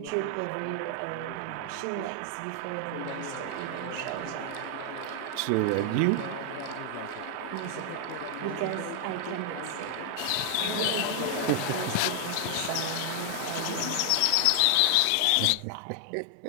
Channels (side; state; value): both; different; correlation 0.00